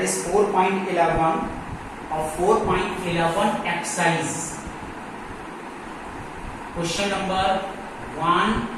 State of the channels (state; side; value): identical; both; correlation 1.00